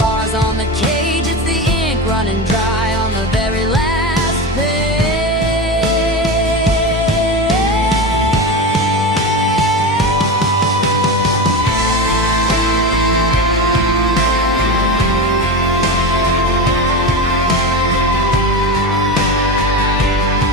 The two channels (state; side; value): normal; both; correlation 0.22